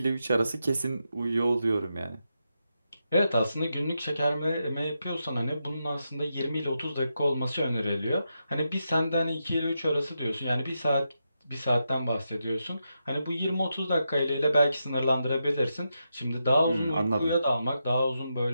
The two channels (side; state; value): both; inverted; correlation -0.85